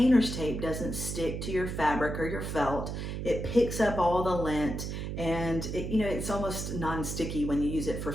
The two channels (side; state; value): right; noise; hum, 5 dB below the sound